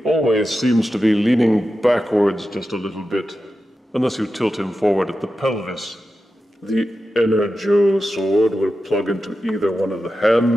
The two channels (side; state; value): both; normal; correlation 0.91